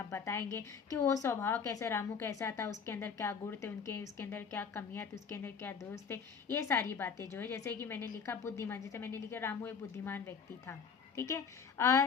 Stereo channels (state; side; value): quieter; right; 6.1 dB